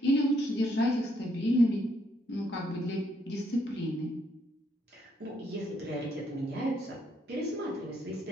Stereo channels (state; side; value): normal; both; correlation 0.72